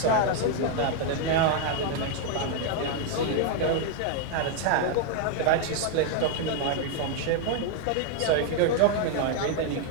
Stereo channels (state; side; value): different; both; correlation 0.00